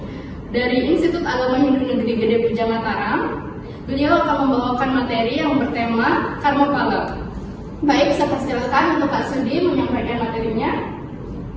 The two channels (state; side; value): identical; both; correlation 1.00